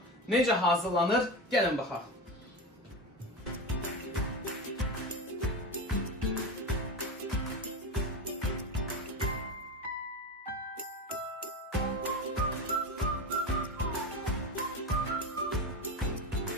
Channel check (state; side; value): normal; both; correlation 0.21